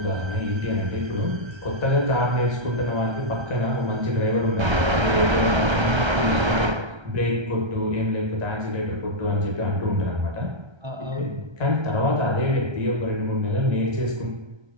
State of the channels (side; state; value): left; late; 1.3 ms